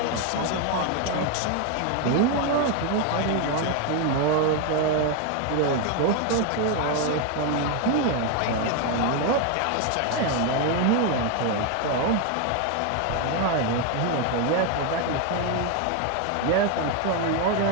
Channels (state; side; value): different; both; correlation 0.01